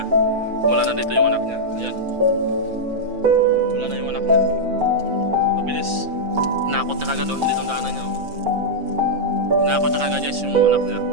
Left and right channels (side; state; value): left; late; 5.9 ms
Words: Wala na dito yung anak niya. Ayan. Wala na yung anak niya. Mabilis. Hinakot na kagad doon, hindi itong daanan niya. Hinakot na kagad guys yung anak niya.